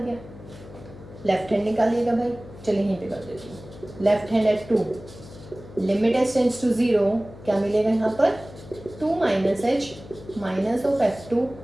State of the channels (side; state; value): left; noise; hum, 17 dB below the sound